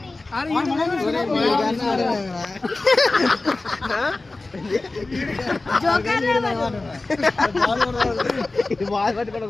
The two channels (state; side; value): quieter; right; 3.2 dB